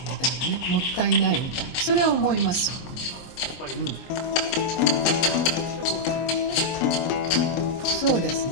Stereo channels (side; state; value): right; late; 23 ms